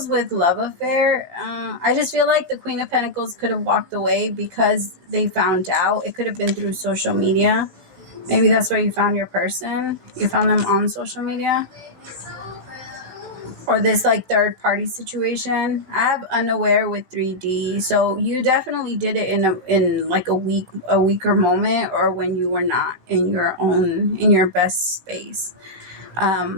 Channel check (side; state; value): left; late; 16 ms